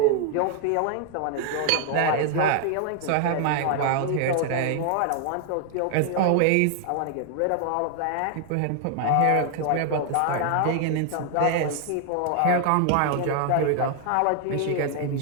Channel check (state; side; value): different; both; correlation 0.00